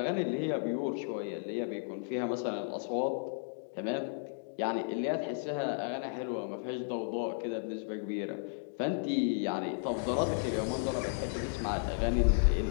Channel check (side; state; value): right; silent; digital silence